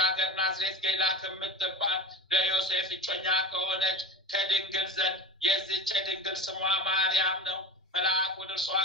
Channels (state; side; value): normal; both; correlation 0.31